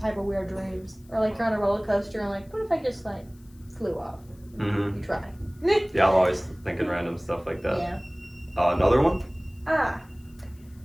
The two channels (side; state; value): left; noise; hiss, 30 dB below the sound